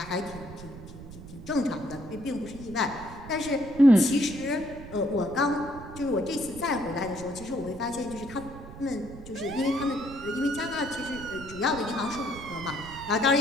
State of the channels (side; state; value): right; noise; rumble, 14 dB below the sound